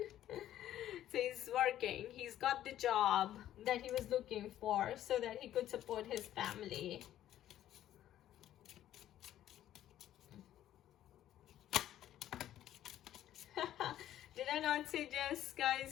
So he's working, he's got the job that he was looking for so that he could support his family. Did I not say just,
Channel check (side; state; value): right; quieter; 12.3 dB